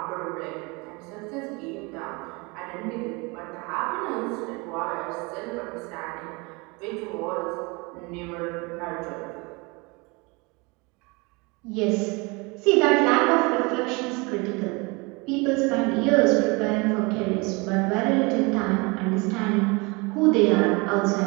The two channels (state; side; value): quieter; left; 27.6 dB